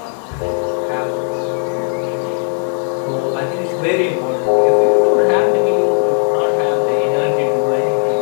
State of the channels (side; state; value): right; silent; 56 dB below the other